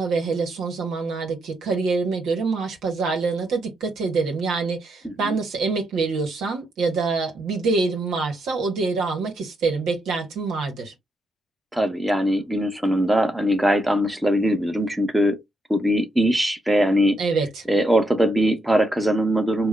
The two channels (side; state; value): both; normal; correlation 0.80